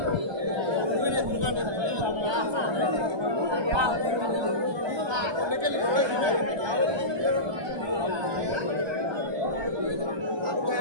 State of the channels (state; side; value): late; left; 1.2 ms